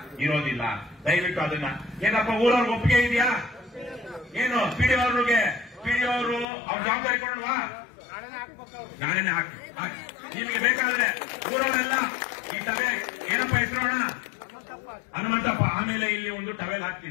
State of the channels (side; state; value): right; drops out; at 6.5 s